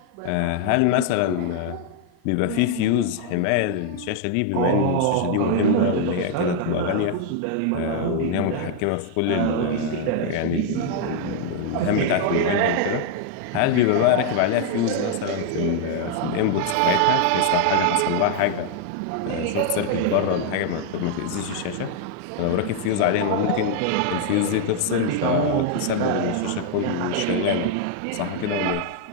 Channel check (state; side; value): different; both; correlation 0.00